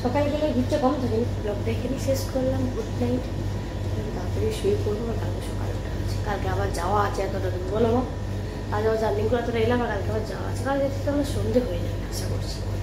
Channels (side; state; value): both; identical; correlation 1.00